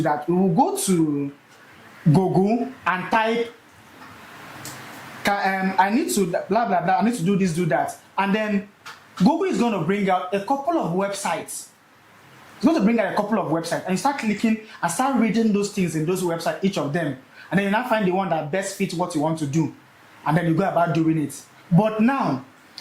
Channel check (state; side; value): identical; both; correlation 1.00